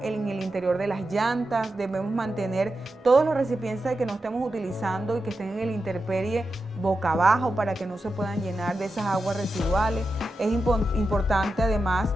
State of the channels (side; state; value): both; normal; correlation 0.90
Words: el interior de las llantas. Debemos mantener todos los recipientes que no estemos utilizando y que estén en el intemperie boca abajo, para que no se puedan llenar de esas aguas residuales. Es importante además